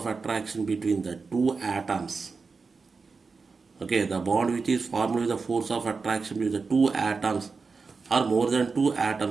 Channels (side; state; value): left; quieter; 4.6 dB